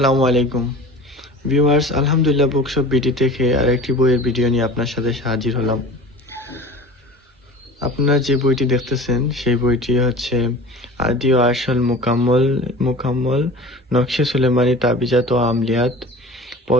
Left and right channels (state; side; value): normal; both; correlation 0.39